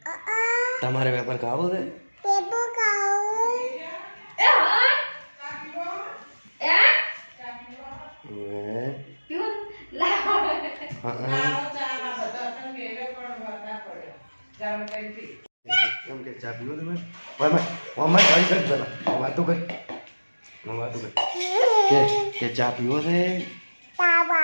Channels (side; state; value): both; inverted; correlation -1.00